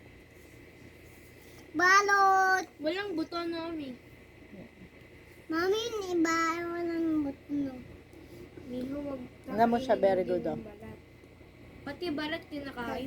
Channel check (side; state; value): both; identical; correlation 1.00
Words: Balot. Walang buto, Mami. Mami, iba walang butno. Miho, wag Alam mo siya, very good, din oh. ng balat. Pati balat